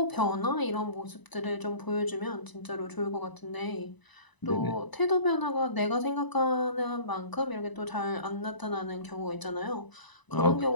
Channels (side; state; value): right; late; 1.0 ms